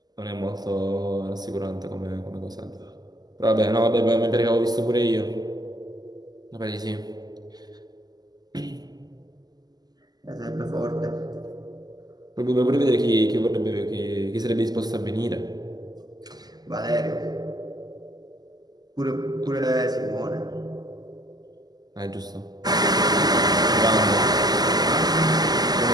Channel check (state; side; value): late; left; 0.20 ms